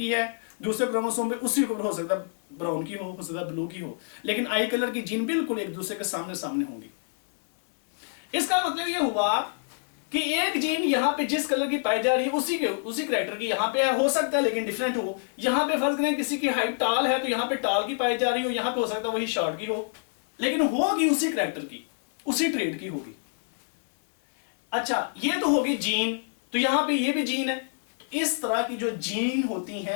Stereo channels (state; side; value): silent; right; 60 dB below the other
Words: है, दूसरे क्रोमोसोम पे उसी के ऊपर हो सकता है ब्राउन की हो सकता है ब्लू की हो, लेकिन आई कलर की जीन बिल्कुल एक दूसरे के सामने सामने होंगी। इसका मतलब ये हुआ कि एक जीन यहाँ पे जिस कलर की पाई जा रही है उसी कैरेक्टर की यहाँ पे हो सकता है लेकिन डिफरेंट हो। यहाँ पे फर्ज करें किसी की हाइट टाल है तो यहाँ पे टाल की पाई जा रही हो, यहाँ पे हो सकता है वही शॉर्ट की हो, लेकिन होगी उसी कैरेक्टर की, उसी ट्रेड की होगी। अच्छा, ये तो होगी जीन, तो यहां पे ये भी जीन है। तो इस तरह की जो जीन होती